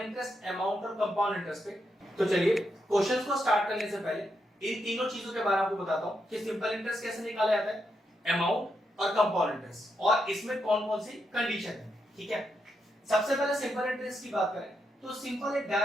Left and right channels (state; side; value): normal; both; correlation 0.82